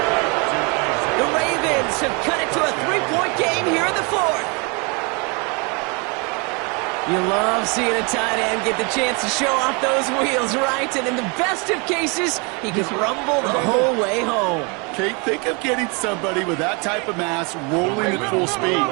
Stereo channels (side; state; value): left; quieter; 31.7 dB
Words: The Ravens have cut it to a 3-point game here in the 4th. You love seeing a tight end get the chance to show off those wheels, right? And in the best of cases, he can rumble the whole way home. Kate, think of getting somebody with that type of mass rolling at full speed.